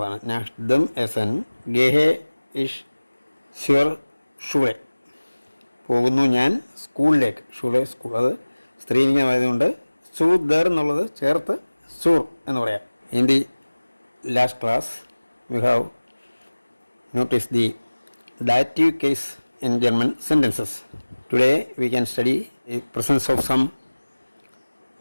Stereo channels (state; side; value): inverted; both; correlation -1.00